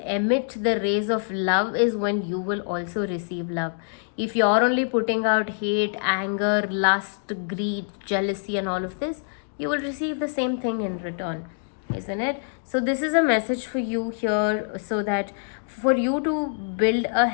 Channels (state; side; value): silent; right; digital silence